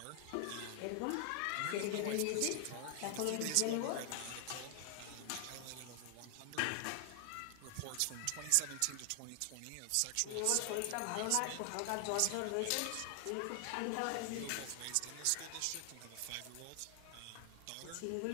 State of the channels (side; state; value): both; different; correlation 0.00